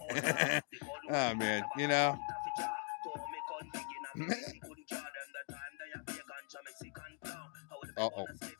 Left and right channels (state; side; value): quieter; right; 37.3 dB